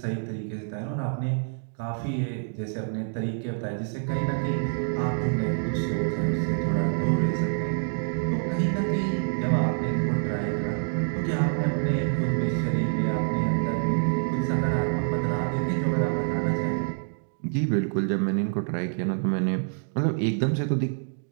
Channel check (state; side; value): silent; left; digital silence